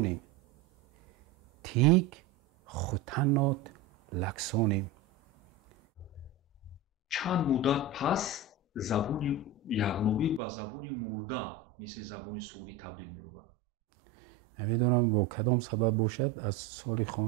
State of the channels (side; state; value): left; drops out; at 10.4 s